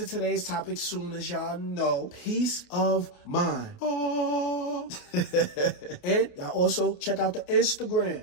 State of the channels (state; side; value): late; right; 29 ms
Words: today's topic soon, as y'all know. Peace of mind. Oh. And y'all also check out the